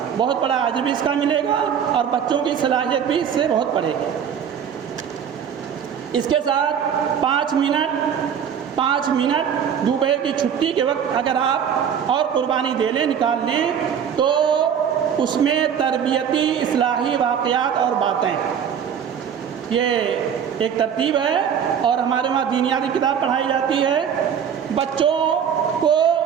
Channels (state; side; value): quieter; left; 8.1 dB